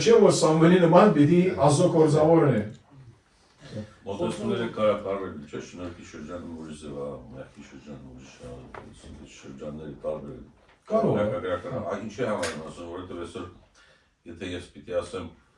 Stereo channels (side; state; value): both; identical; correlation 1.00